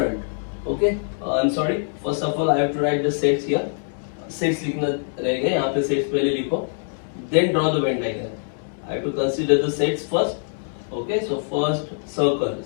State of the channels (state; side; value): silent; right; digital silence